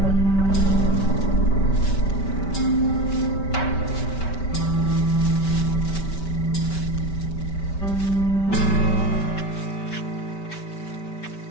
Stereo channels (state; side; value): late; right; 5.2 ms